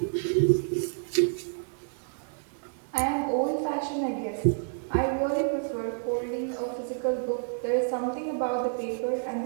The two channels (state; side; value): silent; left; digital silence